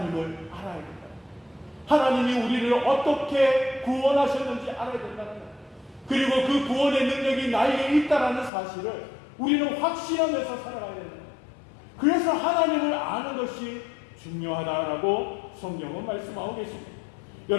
알아야 된다. 하나님이 우리를 어떻게 구원하셨는지 알아야 된다는 거예요. 그리고 그 구원의 능력이 나에게 있다는 사실을 우리는 확신하면서 살아가야 된다. 그래서 하나님을 아는 것이 중요하다라고 성경은 말씀하고 계십니다.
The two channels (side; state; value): right; drops out; at 8.5 s